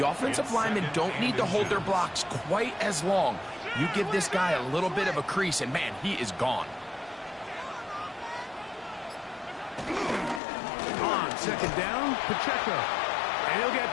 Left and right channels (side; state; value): right; drops out; at 10.4 s